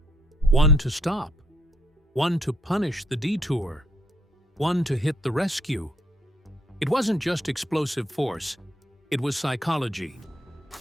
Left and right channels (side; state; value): both; normal; correlation 0.72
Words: One to stop, one to punish the detour, one to hit the rescue. It wasn't just explosive force, it was psychology.